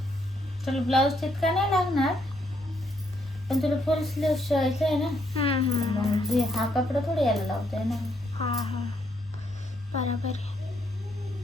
तुला ब्लाऊज तितका नाही लागणार, पण तुला फुल स्लीव शिवायचं आहे ना. मग हा कपडा थोडी यायला लावताय ना. हा, बरोबर आहे.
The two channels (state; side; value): normal; both; correlation 0.74